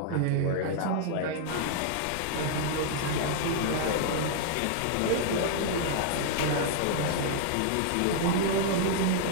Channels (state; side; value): different; both; correlation -0.01